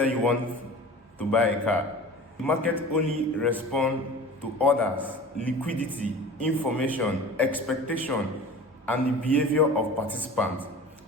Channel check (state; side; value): normal; both; correlation 0.38